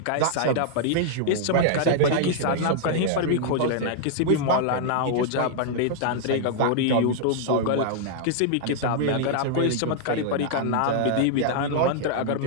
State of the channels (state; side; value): different; both; correlation -0.01